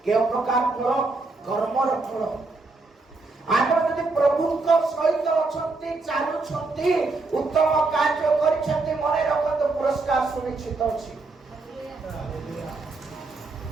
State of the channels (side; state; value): left; quieter; 3.6 dB